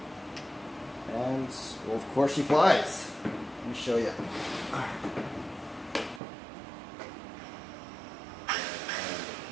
And, well, of course she flies. Let me show you.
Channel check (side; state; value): left; drops out; at 6.2 s